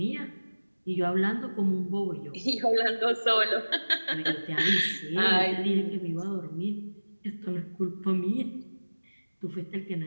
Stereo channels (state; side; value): inverted; both; correlation -1.00